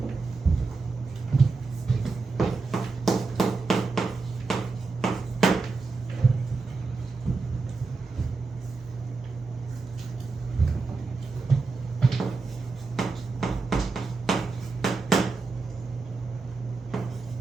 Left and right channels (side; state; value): left; quieter; 4.1 dB